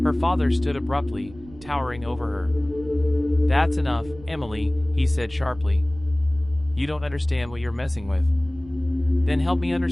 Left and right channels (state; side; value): noise; right; rumble, 19 dB below the sound